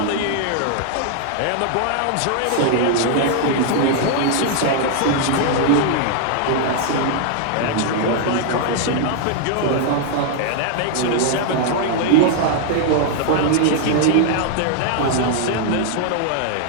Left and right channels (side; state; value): both; different; correlation 0.00